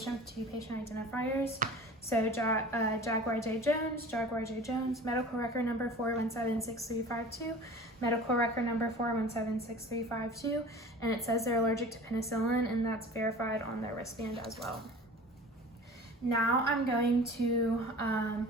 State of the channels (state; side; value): normal; both; correlation 0.41